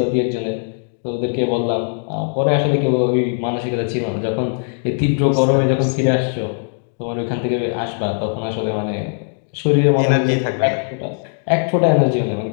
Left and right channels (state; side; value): silent; right; digital silence